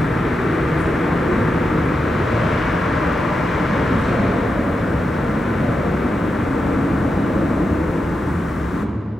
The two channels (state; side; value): normal; both; correlation 0.88